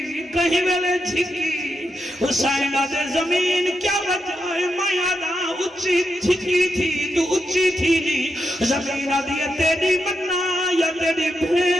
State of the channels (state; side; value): normal; both; correlation 0.85